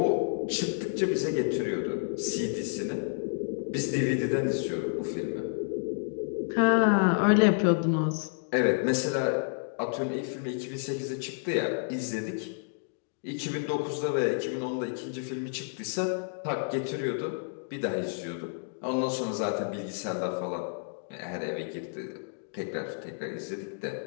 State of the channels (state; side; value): silent; right; digital silence